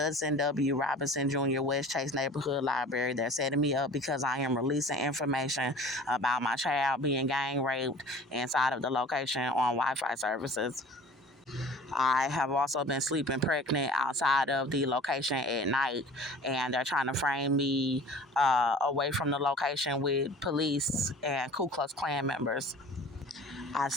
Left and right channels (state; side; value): normal; both; correlation 0.43